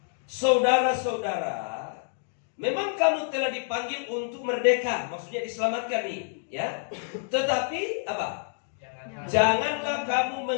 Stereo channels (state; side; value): silent; right; 60 dB below the other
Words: Saudara-saudara, memang kamu telah dipanggil untuk merdeka, maksudnya diselamatkan nih, ya. Tetapi apa? Janganlah kamu